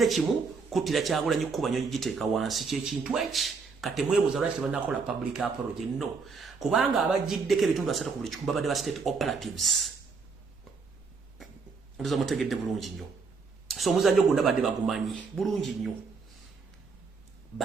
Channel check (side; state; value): left; quieter; 4.9 dB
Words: kimu kutira Kyagulanyi kuba nyonyi giteeka wansi ky'ekintu eki kati mwebuuza lwaki tebannakola public apology no kubanga abagiddeko ebitundu 3 ku buli kikumi babadde ba state operatives. Ndoza mutegedde bulungi nnyo. So omuzannyo gwonna badde bagumanyi bulungi nnyo